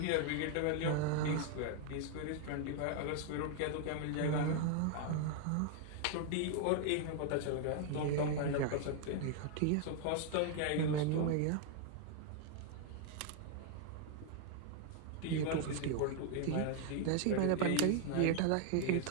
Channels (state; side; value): different; both; correlation 0.00